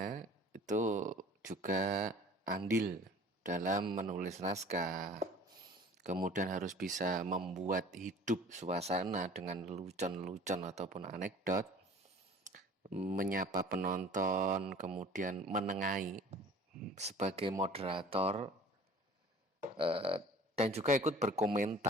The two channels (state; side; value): normal; both; correlation 0.47